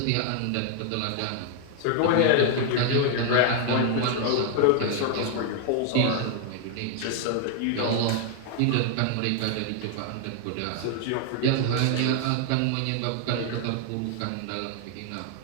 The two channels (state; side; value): different; both; correlation 0.00